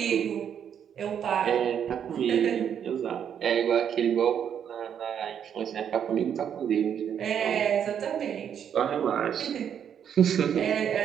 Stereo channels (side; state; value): left; quieter; 8.6 dB